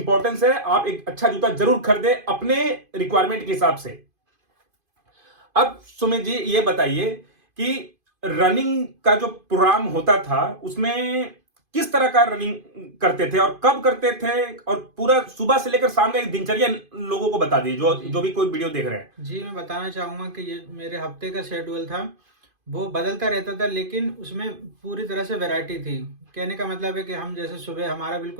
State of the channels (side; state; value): left; late; 2.5 ms